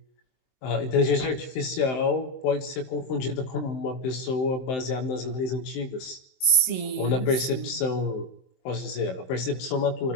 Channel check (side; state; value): right; late; 23 ms